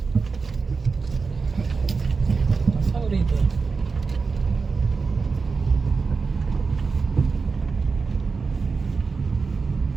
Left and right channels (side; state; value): left; quieter; 4.7 dB